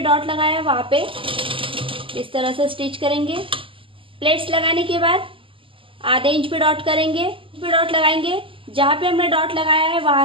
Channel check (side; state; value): left; late; 0.25 ms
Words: लगाया है वहाँ पे इस तरह से स्टिच करेंगे। प्लेट्स लगाने के बाद आधे इंच पे डॉट करेंगे, पे डॉट लगाएंगे। जहाँ पे हमने डॉट लगाया है वहाँ